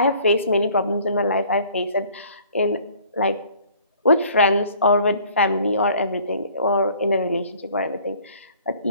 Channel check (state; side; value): inverted; both; correlation -0.55